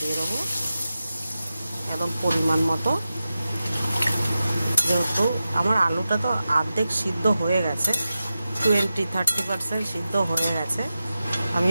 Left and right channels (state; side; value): inverted; both; correlation -0.93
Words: দেবো একদম পরিমাণ মতো। যেহেতু আমার আলুটা তো অর্ধেক সিদ্ধ হয়ে গেছে, 20-30% সিদ্ধ হয়ে গেছে,